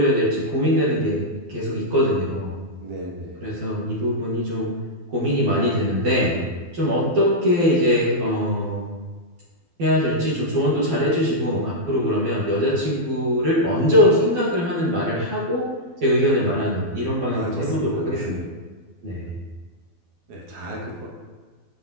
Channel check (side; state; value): left; late; 12 ms